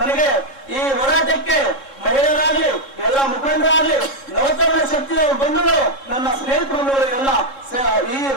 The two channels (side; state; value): right; late; 3.7 ms